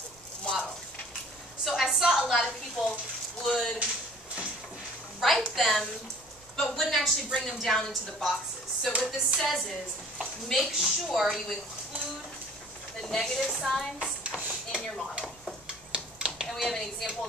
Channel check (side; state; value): right; noise; rumble, 28 dB below the sound